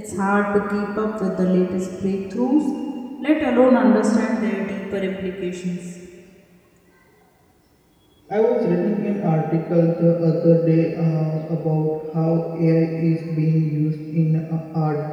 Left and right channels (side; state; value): both; identical; correlation 1.00